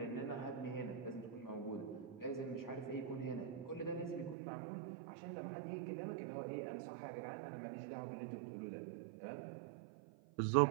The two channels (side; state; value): left; drops out; at 4.4 s